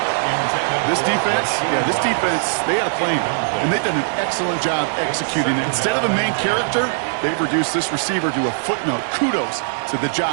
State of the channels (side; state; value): left; silent; digital silence